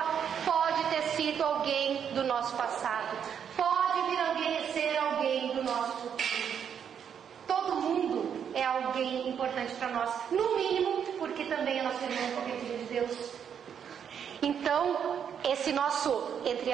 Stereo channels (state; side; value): quieter; left; 8.0 dB